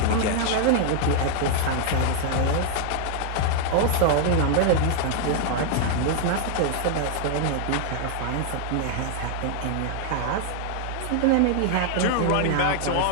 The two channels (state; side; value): different; both; correlation 0.00